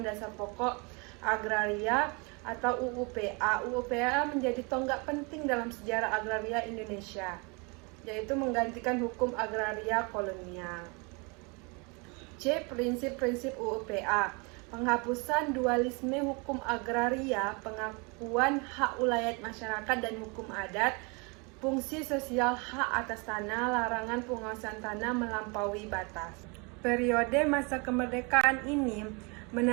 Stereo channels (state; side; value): quieter; left; 30.7 dB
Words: Dasar Pokok Agraria atau UUPA. UUPA menjadi tonggak penting dalam sejarah agraria Indonesia, yaitu menggantikan hukum agraria kolonial. C. Prinsip-prinsip UUPA. Penghapusan dualisme hukum agraria, pengakuan hak ulayat masyarakat dan hukum adat, fungsi sosial hak atas tanah, larangan penguasaan tanah melampaui batas. Periode masa kemerdekaan ini